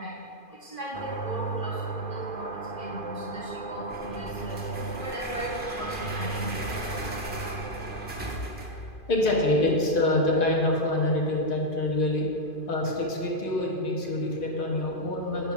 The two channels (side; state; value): right; late; 2.5 ms